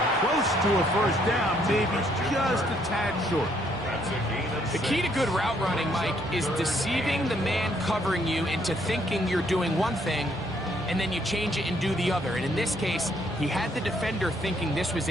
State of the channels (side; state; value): both; normal; correlation 0.69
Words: close to a 1st down, maybe just a tad short. That's a gain of 6. The key to good route running, Mike, is deceiving the man covering you into thinking you're doing one thing, and then you change it and do the other. And in this case, he had the defender thinking this was